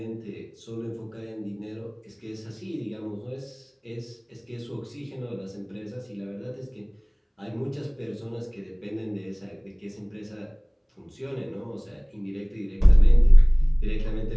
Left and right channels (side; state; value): both; identical; correlation 1.00